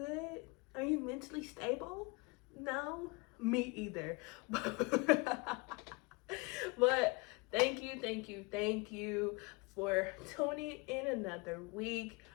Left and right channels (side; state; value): right; quieter; 27.8 dB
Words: Are you mentally stable? No? Me either. But thank you for tuning in another week.